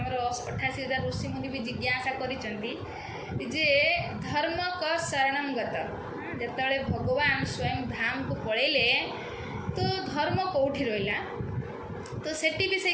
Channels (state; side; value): identical; both; correlation 1.00